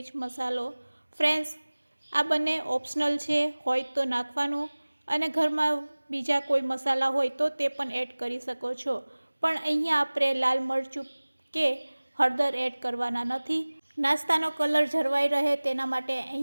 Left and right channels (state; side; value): inverted; both; correlation -1.00